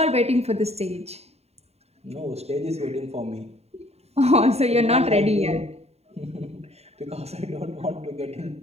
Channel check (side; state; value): left; late; 0.30 ms